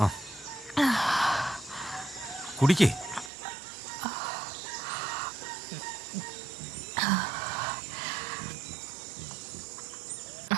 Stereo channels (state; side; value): drops out; left; at 3.3 s